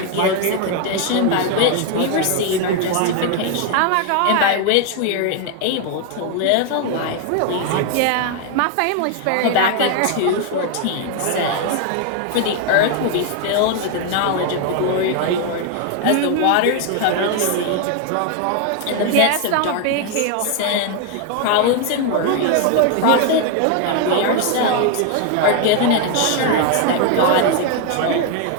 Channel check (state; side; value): different; both; correlation 0.01